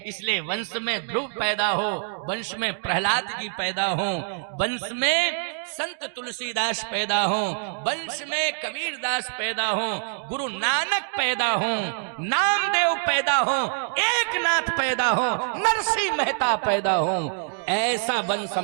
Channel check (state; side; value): silent; left; digital silence